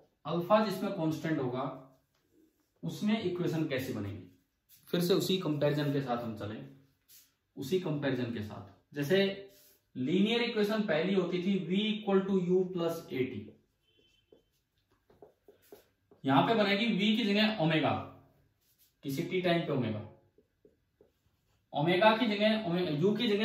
Alpha जिसमें कांस्टेंट होगा उसमें इक्वेशन कैसे बनेगी। फिर से उसी कंपैरिजन के साथ हम चलें, उसी कंपैरिजन के साथ। जैसे लीनियर इक्वेशन पहली होती थी v equal to u plus a t, यहां पे बनेगी v की जगह ओमेगा, किसी टी टाइम पे ओमेगा, ओमेगा की जगह यू की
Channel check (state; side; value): identical; both; correlation 1.00